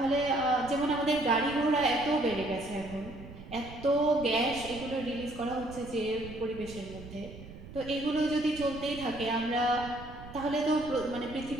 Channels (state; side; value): noise; right; rumble, 15 dB below the sound